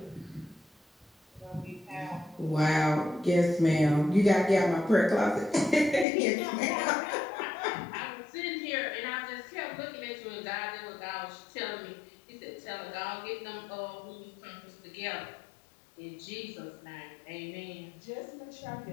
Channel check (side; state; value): right; drops out; at 6.1 s